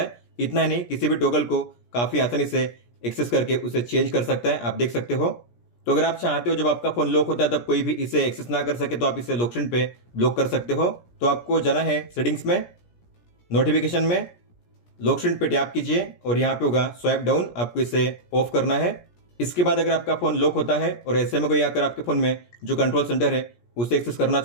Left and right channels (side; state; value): right; late; 17 ms